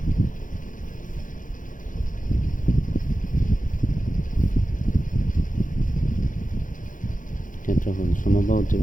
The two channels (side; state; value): right; late; 0.38 ms